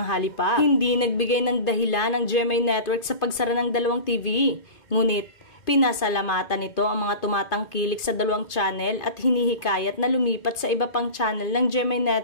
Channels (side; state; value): right; late; 2.5 ms